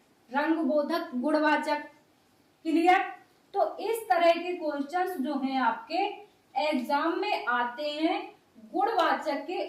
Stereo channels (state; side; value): identical; both; correlation 1.00